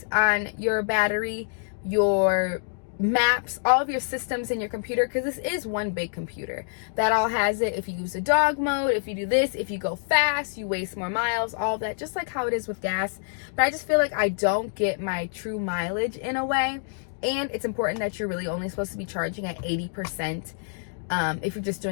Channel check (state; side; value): silent; right; digital silence